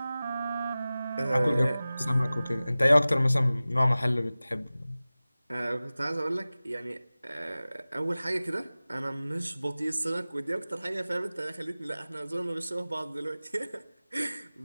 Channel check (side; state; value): both; inverted; correlation -0.97